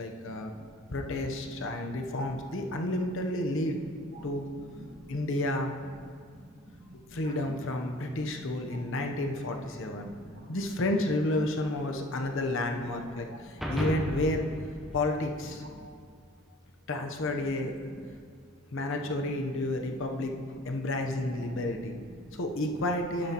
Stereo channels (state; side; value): normal; both; correlation 0.49